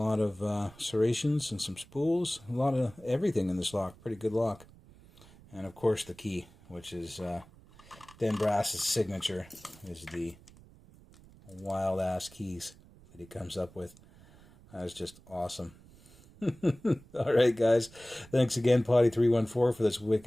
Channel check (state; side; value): noise; right; rumble, 24 dB below the sound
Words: of serrations and some spools. A lot of everything in this lock. Pretty good lock. And of course the key, which is Den Brass's signature, is the wild ass keys that he comes up with. That's just awesome. Alright guys, thanks again Potti314 for this